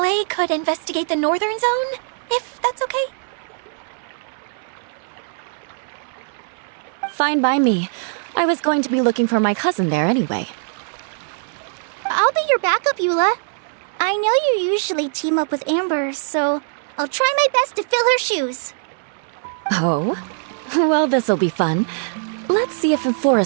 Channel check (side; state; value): left; silent; 61 dB below the other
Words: could investigate the Northern Zone, if that's okay? Fine by me. I was going to be looking for my cousin there anyway. I'll be your backup, Eula. I know you usually team up with Amber, so I'll try my best to fill her shoes. Oh? Well, this'll be fun. Let's see if a